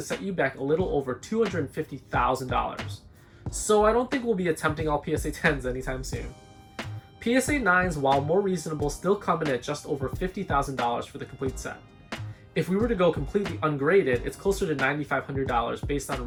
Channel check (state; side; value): identical; both; correlation 1.00